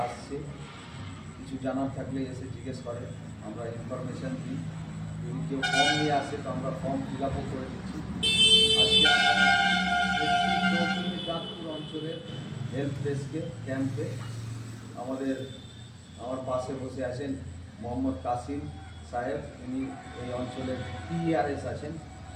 আসছে, কিছু জানার থাকলে এসে জিজ্ঞেস করে, আমরা ইনফরমেশান দিই। যদি কেউ ফর্ম নিয়ে আসে তো আমরা ফর্ম ফিল আপও করে দিচ্ছি। আজকে চাঁদপুর অঞ্চলের হেল্প ডেস্কে ক্যাম্পে আমার পাশে বসে আছেন মোহাম্মদ কাসিম সাহেব, উনি এই অঞ্চলের PRS আছেন,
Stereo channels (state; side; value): identical; both; correlation 1.00